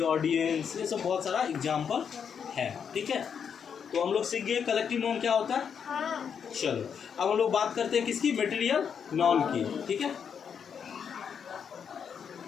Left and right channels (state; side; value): quieter; right; 7.2 dB